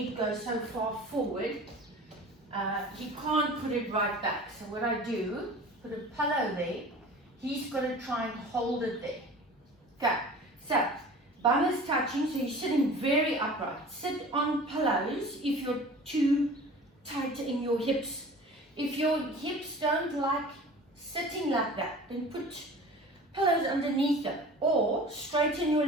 goes so far forward, he can't put it right back. So what I do, put a pillow there, he's got to try and hold it there. Okay, so bum is touching, so you're sitting very upright. Sit on pillows if you're too tight in your hips. If your hips don't like sitting like that, then put pillows underneath them. Or straighten your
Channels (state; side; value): normal; both; correlation 0.41